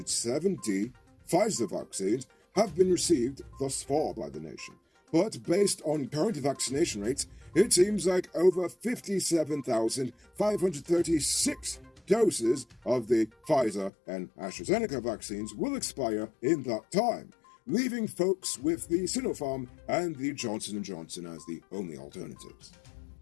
Pfizer vaccines have been received thus far by the nation. But based on current vaccination rates, it seems like over 57,536 doses of the Pfizer and AstraZeneca vaccines will expire in that time, leaving folks with the Sinopharm and the Johnson & Johnson as the only alternatives.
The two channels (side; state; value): right; drops out; at 13.9 s